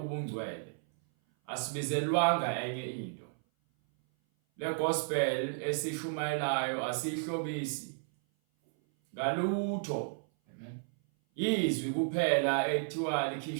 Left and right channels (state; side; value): silent; left; 56 dB below the other